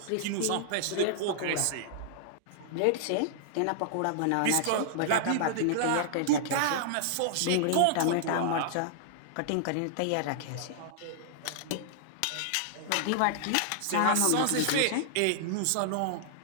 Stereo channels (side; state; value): both; different; correlation -0.01